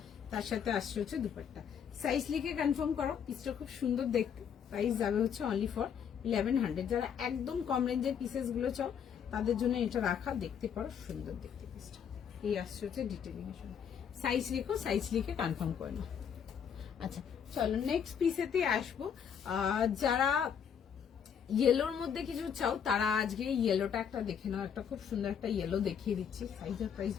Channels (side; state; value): right; quieter; 7.8 dB